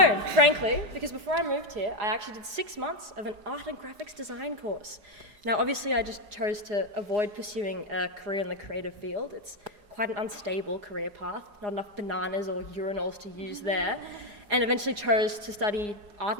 frankly, because before I moved here, I actually did 6 months of an art and graphics design course. Now, obviously, I just chose to avoid pursuing a career in the creative field. It's quite an unstable career path, not enough bananas or urinals to use there. And eventually chose to study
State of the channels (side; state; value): left; late; 4.9 ms